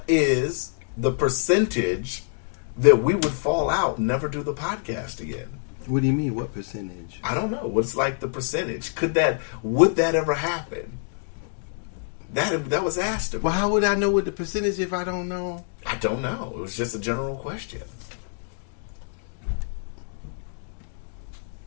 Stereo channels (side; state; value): right; silent; digital silence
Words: is the percentage that we would fall out and never do the podcast again? What do you mean? What percentage? I don't know. What's like the percentage? Would that ever happen? That was asked of me. Well, how would I know what the percentage if I don't know? I don't know. It was just a general question.